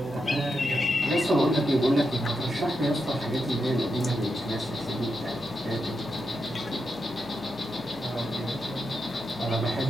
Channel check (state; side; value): noise; right; hum, 19 dB below the sound